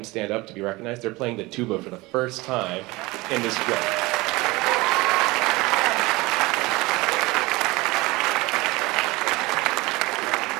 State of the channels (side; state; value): left; quieter; 22.1 dB